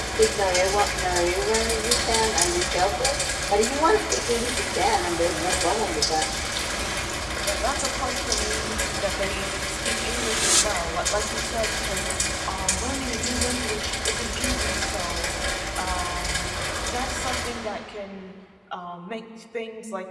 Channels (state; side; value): identical; both; correlation 1.00